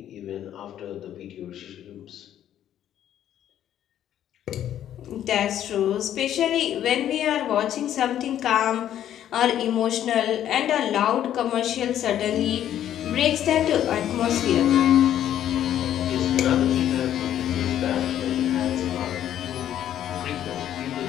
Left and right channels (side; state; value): right; quieter; 11.0 dB